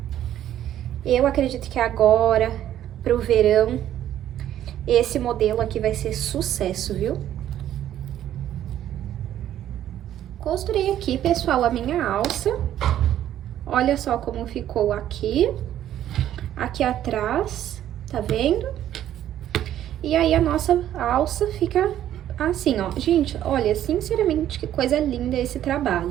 Eu acredito que agora, pro verão, esse modelo aqui vai ser sucesso, viu? Costurei aqui, pessoal, a minha alça. Olha só como ficou aqui atrás, tá vendo? E aí, a nossa alça fica assim, ó. Gente, olha, sinceramente, que coisa linda esse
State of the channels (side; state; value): left; quieter; 11.6 dB